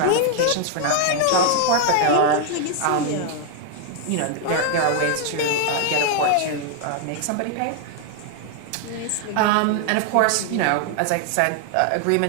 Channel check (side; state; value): both; different; correlation 0.00